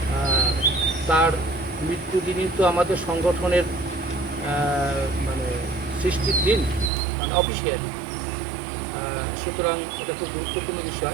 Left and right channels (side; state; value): left; drops out; at 6.9 s